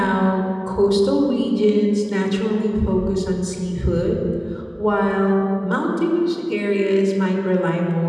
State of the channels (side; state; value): both; identical; correlation 1.00